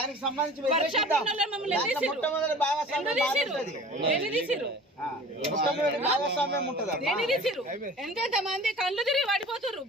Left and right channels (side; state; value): both; normal; correlation 0.43